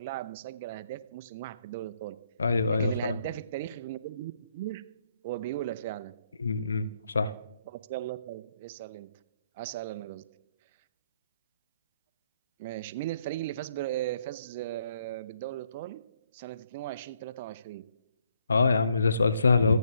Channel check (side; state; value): both; inverted; correlation -0.71